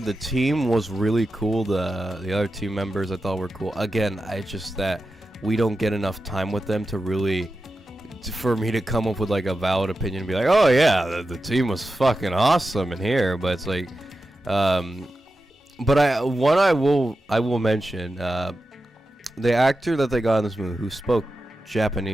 the team was really cool. The other team members I thought were cool. Again, it's just that we don't get enough time with them for me to come up with like a valid opinion and be like, oh yeah, the team was fucking awesome in here. But it's like, but I will mention, the actor that they got in this movie who spoke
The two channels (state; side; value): normal; both; correlation 0.91